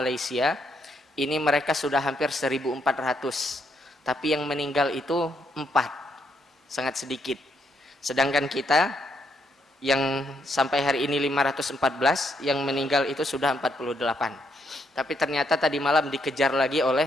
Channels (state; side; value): normal; both; correlation 0.76